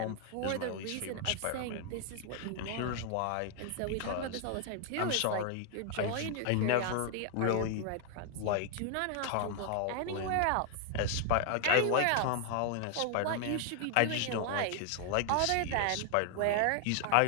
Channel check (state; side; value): different; both; correlation 0.00